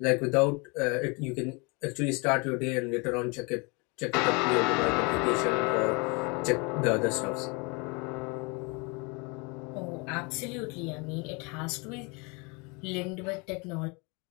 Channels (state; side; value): quieter; right; 30.0 dB